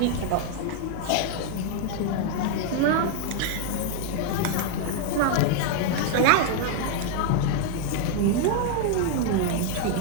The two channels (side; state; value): both; different; correlation 0.00